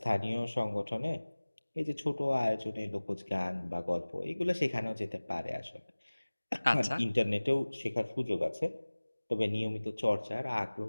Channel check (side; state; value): both; inverted; correlation -1.00